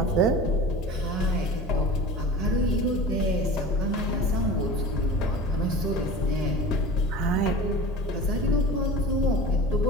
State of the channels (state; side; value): normal; both; correlation 0.36